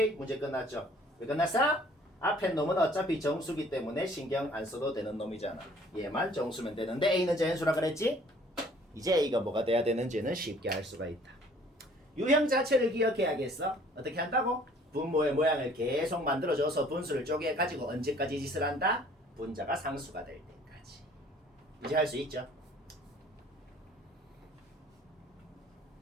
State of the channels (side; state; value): both; normal; correlation 0.55